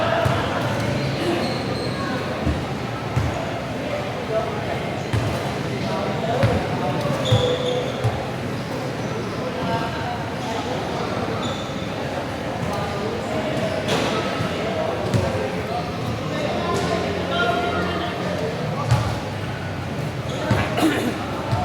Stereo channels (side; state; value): both; identical; correlation 1.00